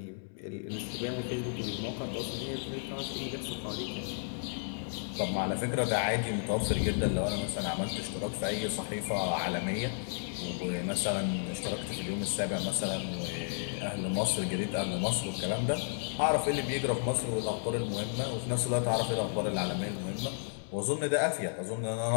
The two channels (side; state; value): right; silent; 56 dB below the other